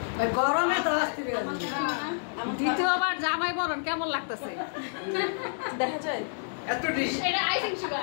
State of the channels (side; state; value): right; silent; 59 dB below the other